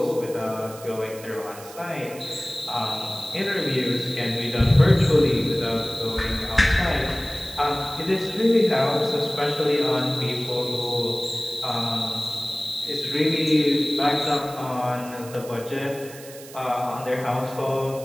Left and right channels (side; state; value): right; noise; hiss, 17 dB below the sound